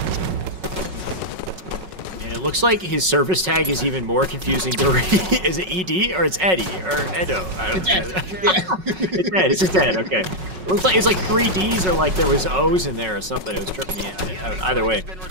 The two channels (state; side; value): late; left; 5.4 ms